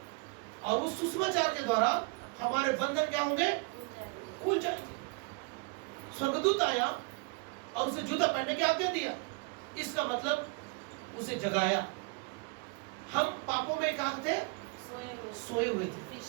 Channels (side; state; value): left; quieter; 30.4 dB